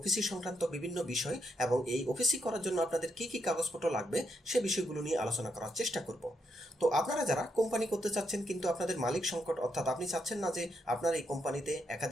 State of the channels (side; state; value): both; normal; correlation 0.79